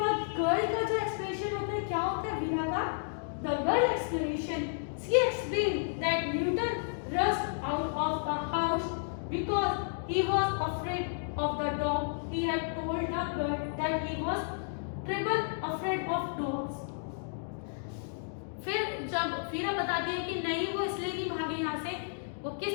गर्ल का जो एक्सप्लेनेशन होता है, क्या होता है वीरा का, the girl explanation, she explained that Newton rushed out of the house because he was afraid of the dog. He had told the girl that he was terribly afraid of dogs. फिर जब वीरा बताती है कि नहीं वो इसलिए नहीं भागे यहाँ से, वो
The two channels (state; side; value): silent; right; digital silence